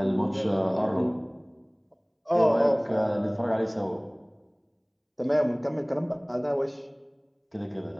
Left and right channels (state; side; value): identical; both; correlation 1.00